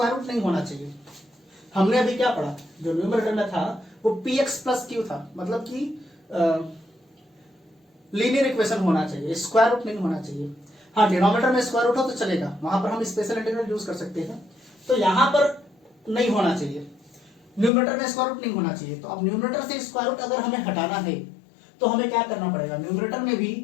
रूट नहीं होना चाहिए। हमने अभी क्या पढ़ा, जो न्यूमरेटर में था वो px प्लस q था, मतलब कि लीनियर इक्वेशन होना चाहिए, स्क्वायर रूट नहीं होना चाहिए। हाँ, डिनोमिनेटर में स्क्वायर रूट हो तो चलेगा, वहां पर हम स्पेशल इंटीग्रल यूज कर सकते हैं, तो यहां पर नहीं होना चाहिए, न्यूमरेटर में स्क्वायर रूट नहीं होना चाहिए। तो अब न्यूमरेटर से स्क्वायर रूट अगर हमें हटाना है तो हमें क्या करना पड़ेगा, न्यूमरेटर में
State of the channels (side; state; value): right; drops out; at 17.7 s